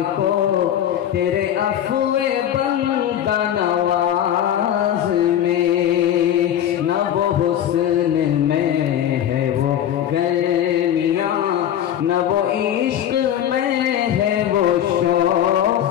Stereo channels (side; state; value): right; quieter; 10.5 dB